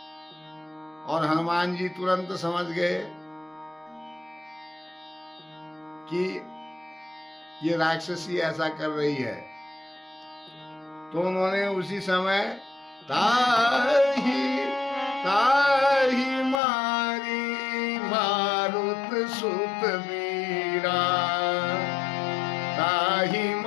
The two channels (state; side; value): drops out; right; at 16.6 s